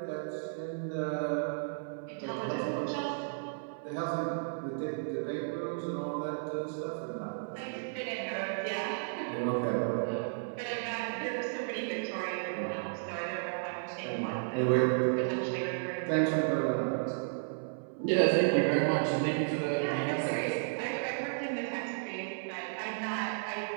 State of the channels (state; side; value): silent; left; 55 dB below the other